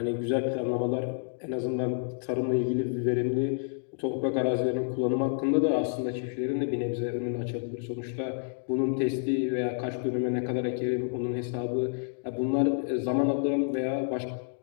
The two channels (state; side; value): silent; right; digital silence